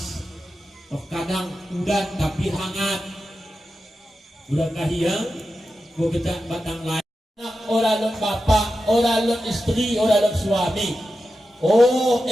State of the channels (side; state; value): both; normal; correlation 0.91